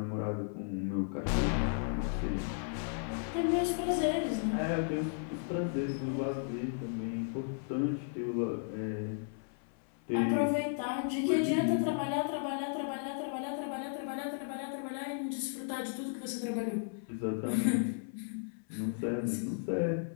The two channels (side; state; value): right; silent; 55 dB below the other